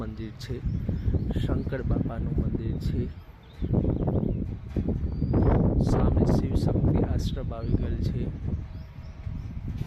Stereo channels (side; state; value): both; identical; correlation 1.00